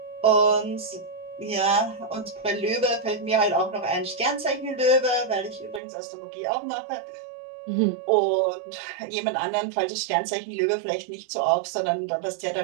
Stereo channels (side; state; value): left; drops out; at 5.8 s